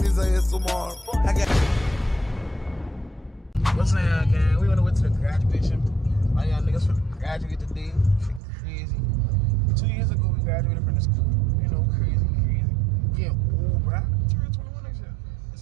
his ass tomorrow. What's up, gang? We on the way to the graduation. All y'all niggas finna graduate today. Crazy. 2 years ago, we graduated from the school. You know, crazy. Yeah, old, bruh. Turn 21 next year. It's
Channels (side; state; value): left; drops out; at 8.4 s